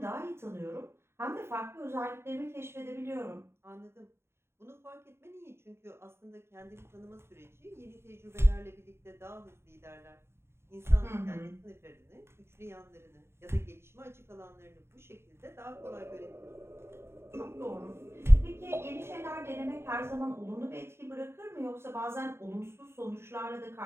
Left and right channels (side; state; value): left; late; 0.12 ms